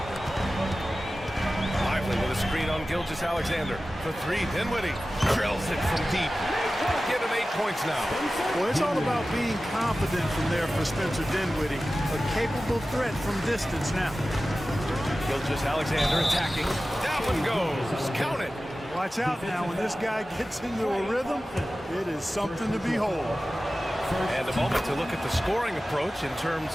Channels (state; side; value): normal; both; correlation 0.95